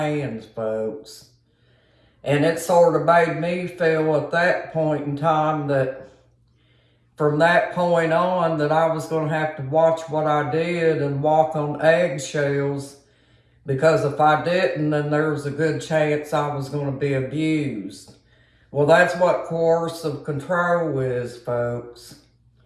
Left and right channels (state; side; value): identical; both; correlation 1.00